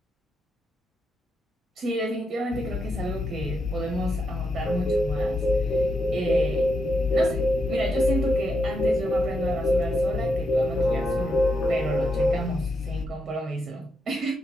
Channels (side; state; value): both; normal; correlation 0.82